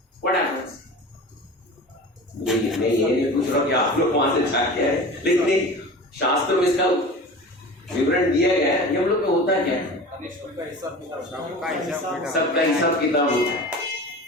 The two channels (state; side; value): normal; both; correlation 0.36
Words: व्हाट हैपेंस? मैं ये नहीं पूछ रहा कि आप लोग वहां से जाके आए, लेकिन शास्त्र में इसका विवरण दिया गया है। यमलोक में होता क्या है? सबका हिसाब किताब होता है।